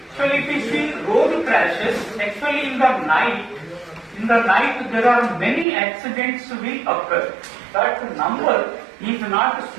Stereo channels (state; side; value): drops out; left; at 5.7 s